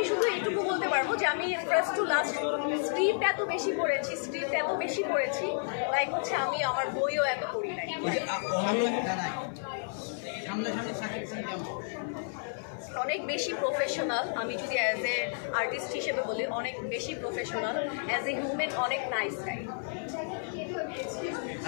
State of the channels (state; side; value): silent; right; 57 dB below the other